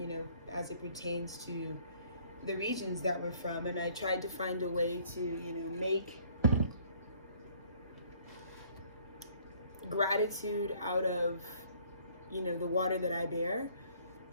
as it pertains to the regions that we're from. And I tried to find a way to, make gratitude out of, the water that I bear.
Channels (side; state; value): both; inverted; correlation -0.59